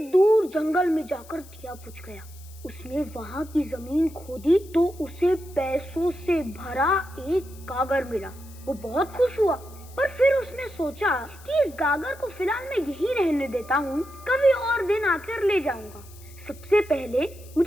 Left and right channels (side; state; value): left; noise; hiss, 22 dB below the sound